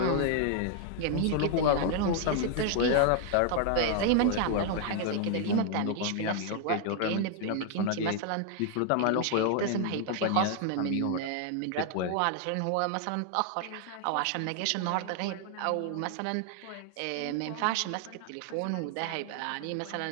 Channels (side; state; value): both; different; correlation 0.00